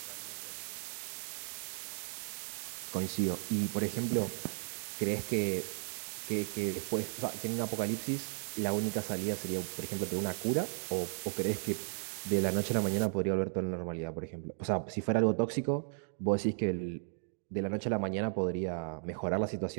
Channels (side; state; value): left; silent; digital silence